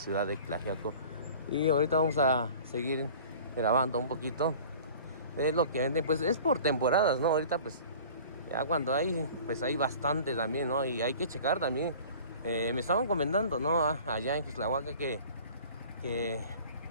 de Tlaxiaco. Y ahorita vamos a seguir grabando un poquito de lo que venden. Pues es por temporadas, ¿no? Ahorita pues ya cuando hay, pues hay bastante también, ¿no? Y hay que checar también. Me estaban comentando, ¿no? Allá en Xuxtlahuaca que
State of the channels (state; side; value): inverted; both; correlation -0.44